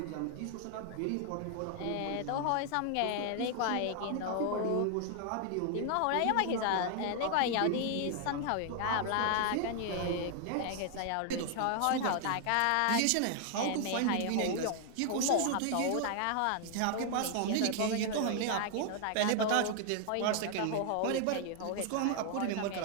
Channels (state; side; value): different; both; correlation 0.00